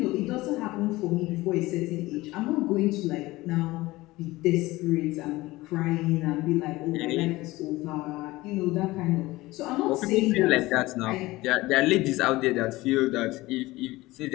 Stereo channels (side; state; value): right; quieter; 19.4 dB